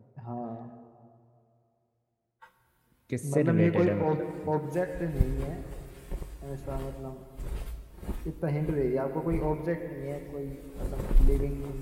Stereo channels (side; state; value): both; identical; correlation 1.00